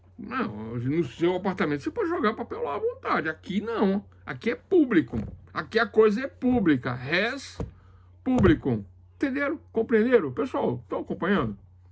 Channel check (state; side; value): identical; both; correlation 1.00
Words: não, no seu apartamento você pode jogar papel lá à vontade. Aqui não, aqui é público. Aqui a coisa é pública, res publicum. Entenderam? Compreenderam? Pessoal, estão acompanhando?